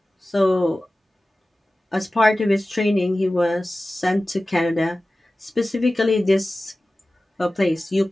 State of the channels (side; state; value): both; normal; correlation 0.96